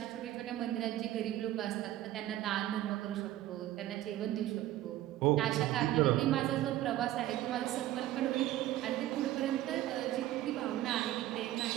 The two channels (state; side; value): quieter; left; 14.3 dB